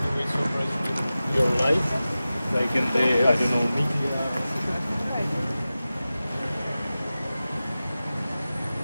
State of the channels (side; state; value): both; inverted; correlation -0.95